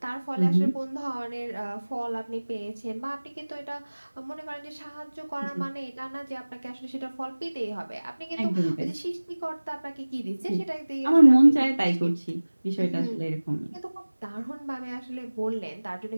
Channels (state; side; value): inverted; both; correlation -1.00